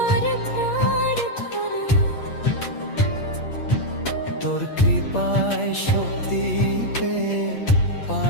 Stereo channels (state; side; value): late; right; 8.4 ms